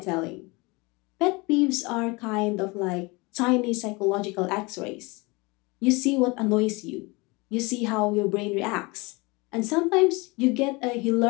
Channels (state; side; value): quieter; right; 25.8 dB